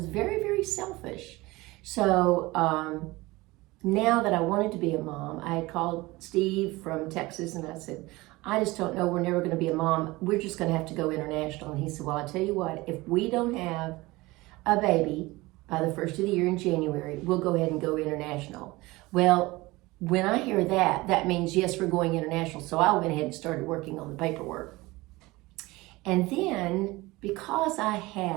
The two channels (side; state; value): left; quieter; 21.1 dB